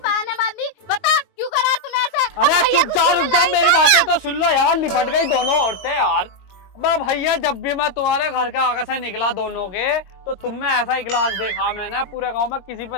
बांधी। बता क्यों करा तूने ऐसे? अरे चुप जा, रुक जा, मेरी बातें तो सुन लो यार। निपट गई दोनों औरतें यार। अब भैया, जब भी मैं तुम्हारे घर के आगे से निकला दोनों के, तो तुम में ऐसा ही गिलास देखा मैंने, पूरे गांव में किसी पे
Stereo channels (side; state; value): right; late; 21 ms